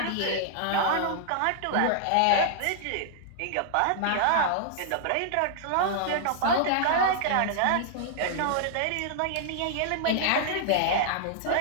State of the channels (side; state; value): both; different; correlation -0.01